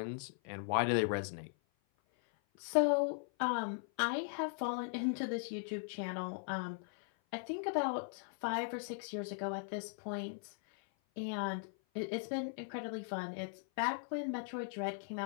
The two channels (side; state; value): right; silent; 52 dB below the other